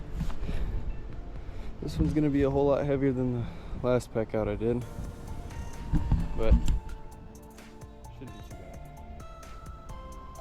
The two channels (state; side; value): identical; both; correlation 1.00